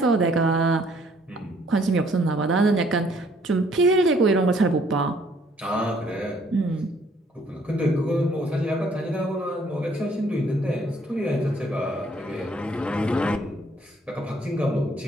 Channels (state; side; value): normal; both; correlation 0.63